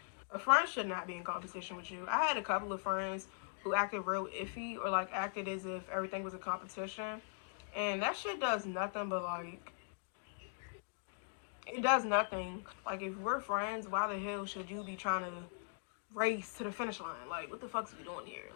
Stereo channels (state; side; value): silent; right; digital silence